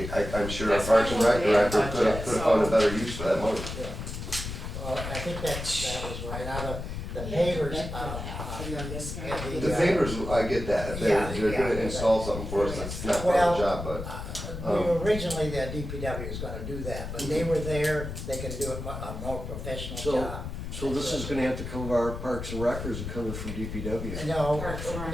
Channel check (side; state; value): left; noise; rumble, 7 dB below the sound